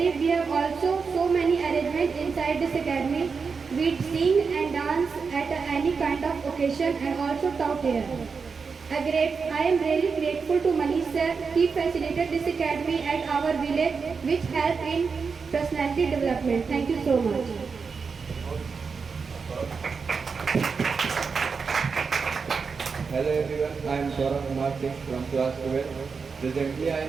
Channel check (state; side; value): quieter; left; 5.3 dB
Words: we have also so many arrangements inside this academy. We sing and dance at any kind of occasion and also taught here. I am really grateful to Manish sir. He facilitated this academy at our village, which helped in personality development. Thank you so much. Hello everyone, I am Saurabh Kumar Singh from class 12. Presently I